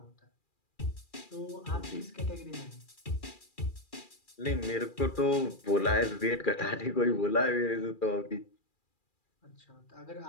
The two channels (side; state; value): right; late; 2.4 ms